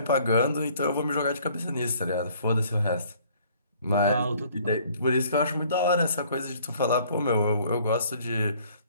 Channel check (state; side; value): inverted; both; correlation -0.58